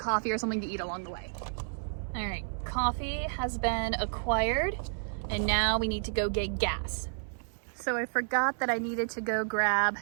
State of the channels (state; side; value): silent; left; 57 dB below the other